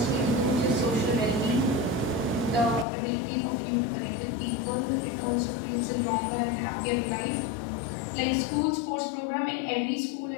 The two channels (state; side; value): drops out; right; at 2.9 s